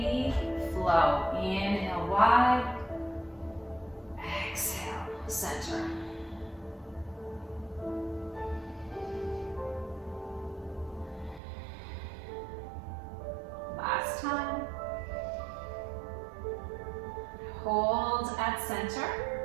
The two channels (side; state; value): left; drops out; at 11.4 s